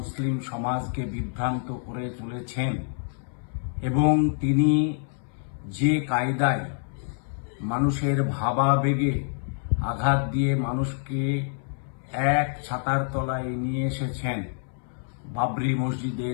সমাজকে বিভ্রান্ত করে চলেছেন এবং তিনি যে কায়দায় মানুষের ভাবাবেগে আঘাত দিয়ে মানুষকে এক ছাতার তলায় নিয়ে এসেছেন বাবরি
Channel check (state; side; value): silent; right; 59 dB below the other